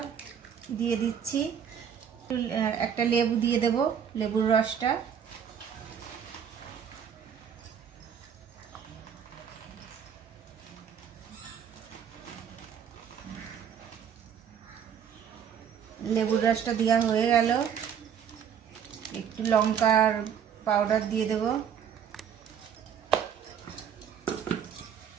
দিয়ে দিচ্ছি। একটা লেবু দিয়ে দেবো, লেবুর রসটা। লেবুর রসটা দেওয়া হয়ে গেল। একটু লঙ্কার পাউডার দিয়ে দেব।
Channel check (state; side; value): quieter; left; 8.2 dB